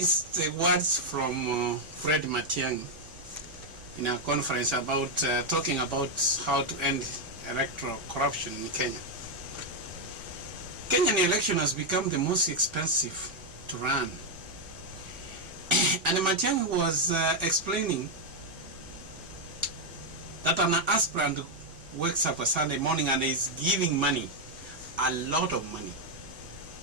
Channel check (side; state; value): both; normal; correlation 0.01